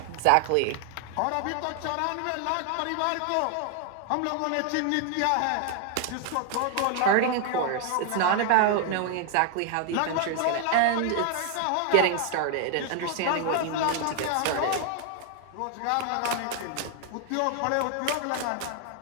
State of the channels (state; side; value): different; both; correlation 0.00